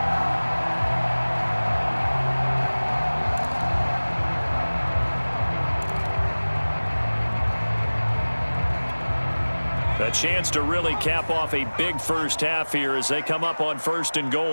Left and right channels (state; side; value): inverted; both; correlation -1.00